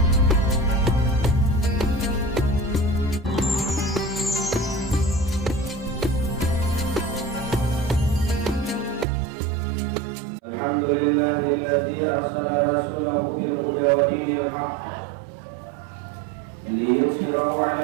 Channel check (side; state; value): left; drops out; at 9.1 s